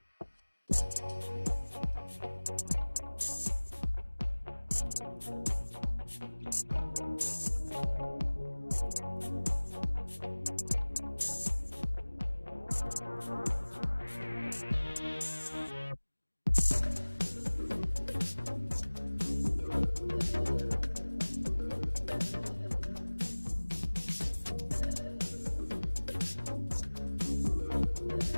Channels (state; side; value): inverted; both; correlation -1.00